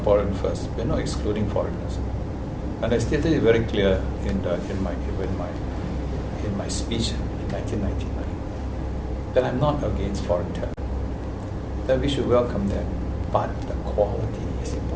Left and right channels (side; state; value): both; identical; correlation 1.00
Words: first. We're not excluding foreigners, and I stated it very clear in my speech in 1999 that I'm not against foreign talent. That we should welcome them, but the quality is